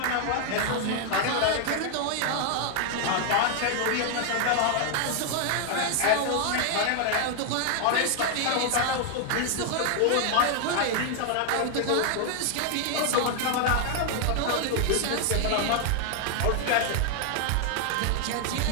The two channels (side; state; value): both; different; correlation 0.00